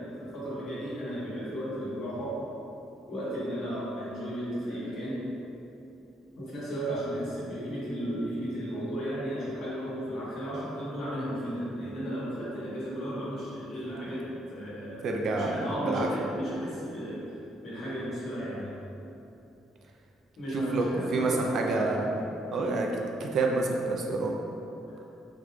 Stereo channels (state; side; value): normal; both; correlation 0.71